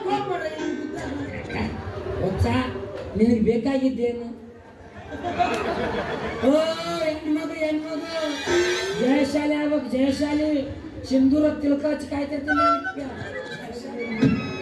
ಹೊಸ ನಿನಗೆ ಬೇಕಾಗಿದ್ದೇನು? ಓ ಹೆಣ್ಮಗು ಜಯಶಾಲಿ ಆಗ್ಬೇಕು, ಜಯಶಾಲಿ. ಸಿಂಧೂರ ತಿಳ್ಕ ಹಚ್ಚಿ ಕಾಯ್ತಿರ್ತೀನಿ.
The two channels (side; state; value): both; identical; correlation 1.00